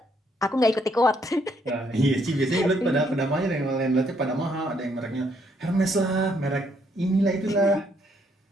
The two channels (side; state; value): both; normal; correlation 0.71